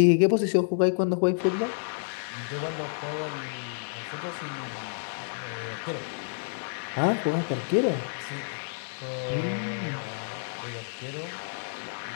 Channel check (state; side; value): silent; right; 58 dB below the other